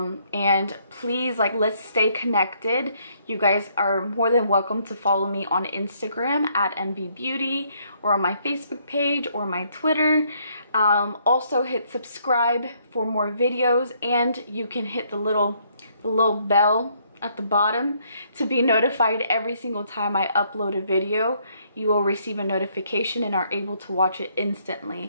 please, like, let's stay connected. You guys are more than welcome to follow me on Instagram at mvbeautyy, or on my Facebook page or my Twitter. Also hit subscribe for more videos, and you can hit the little bell at the bottom to be notified every single time I upload a video. You will receive a notification and are able to watch it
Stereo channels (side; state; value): both; inverted; correlation -0.69